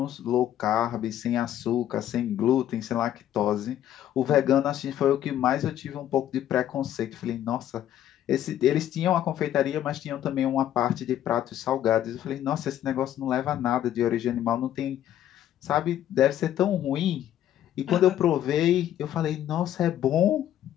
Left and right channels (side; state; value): right; quieter; 11.6 dB